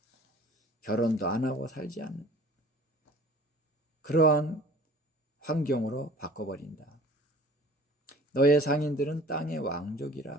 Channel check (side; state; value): both; normal; correlation 0.47